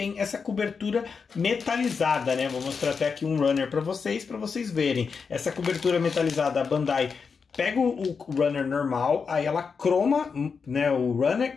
essa cobertura metalizada, né? Vou mostrar até aqui um runner para vocês verem. Essa cobertura metalizada, a Bandai pega o runner normal, aí ela croma, né, o runner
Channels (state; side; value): quieter; right; 5.5 dB